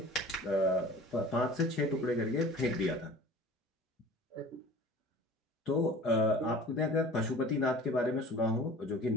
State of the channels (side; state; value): both; normal; correlation 0.43